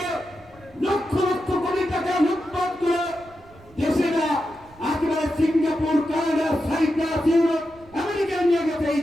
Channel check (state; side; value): noise; right; rumble, 25 dB below the sound